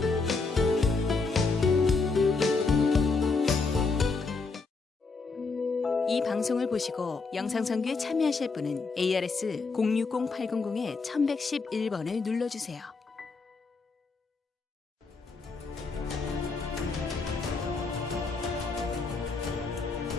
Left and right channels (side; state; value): right; quieter; 4.2 dB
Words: 이 방송을 보시고 영상선교에 참여하실 분은 ARS 060-800-1111번을 눌러주세요.